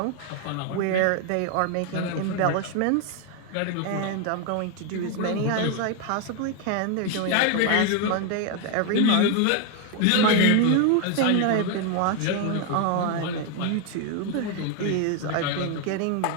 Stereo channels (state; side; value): different; both; correlation 0.01